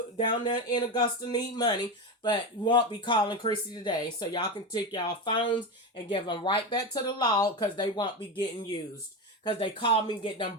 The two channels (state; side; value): normal; both; correlation 0.18